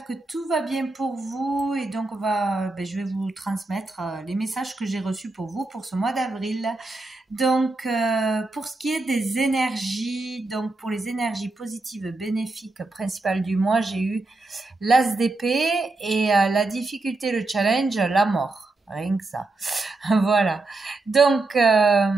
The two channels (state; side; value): quieter; left; 3.2 dB